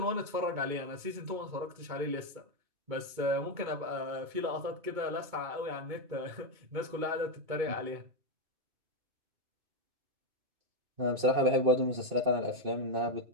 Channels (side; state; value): left; late; 2.2 ms